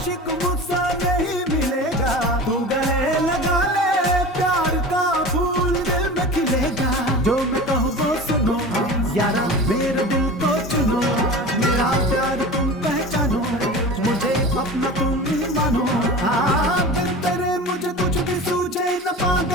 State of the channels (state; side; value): normal; both; correlation 0.34